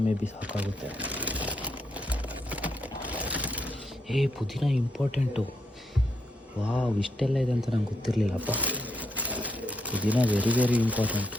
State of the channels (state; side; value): normal; both; correlation 0.79